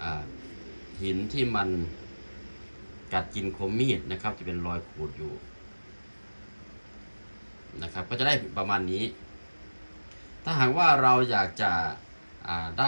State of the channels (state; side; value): inverted; both; correlation -1.00